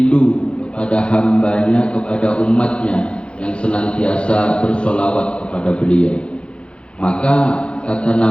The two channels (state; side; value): late; right; 0.058 ms